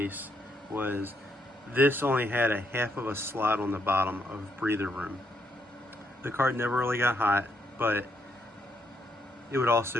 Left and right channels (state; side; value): normal; both; correlation 0.76